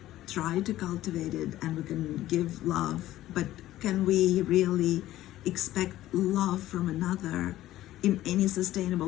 try to cultivate it and we can give love, but can we really expect love from another in any sustainable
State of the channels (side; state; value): right; quieter; 14.6 dB